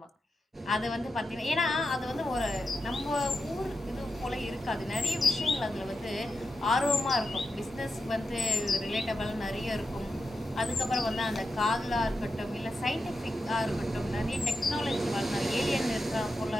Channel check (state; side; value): normal; both; correlation 0.88